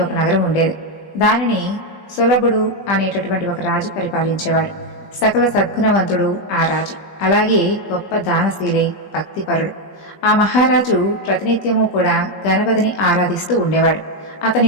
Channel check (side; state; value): right; late; 20 ms